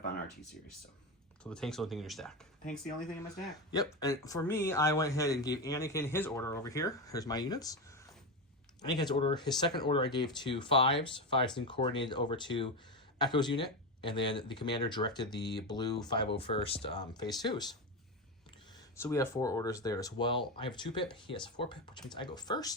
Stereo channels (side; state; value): both; normal; correlation 0.15